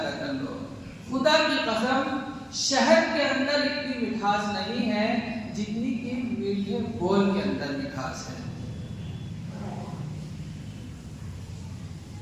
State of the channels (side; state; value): both; identical; correlation 1.00